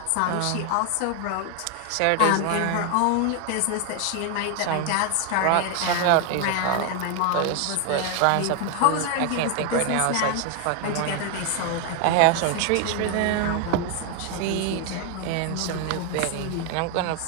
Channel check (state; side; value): different; both; correlation 0.00